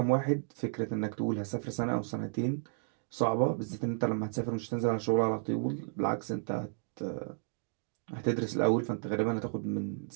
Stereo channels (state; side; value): silent; left; digital silence